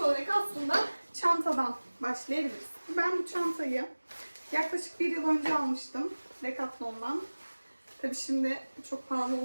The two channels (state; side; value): inverted; both; correlation -1.00